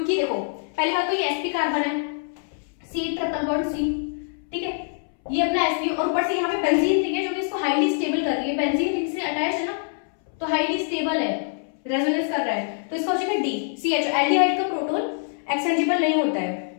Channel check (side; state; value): right; silent; 62 dB below the other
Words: देखो पहली बात तो ये sp कार्बन है, C ट्रिपल बॉन्ड C, ठीक है, ये अपना sp और ऊपर से यहाँ पे बेंजीन रिंग है जो कि इसको हाईली स्टेबल कर रही है, बेंजीन रिंग से अटैच है ना तो हाईली स्टेबल है, रेजोनेंस कर रहा है, तो इसका हो जाएगा D CH। एल्डिहाइड का प्रोटॉन एक्सचेंजेबल नहीं होता है,